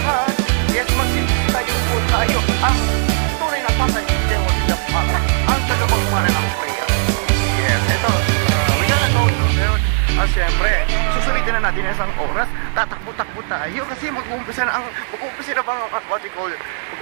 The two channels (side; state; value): left; silent; digital silence